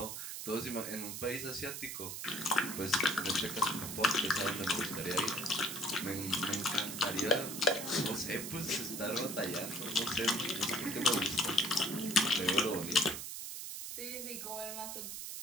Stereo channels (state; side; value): noise; right; hiss, 6 dB below the sound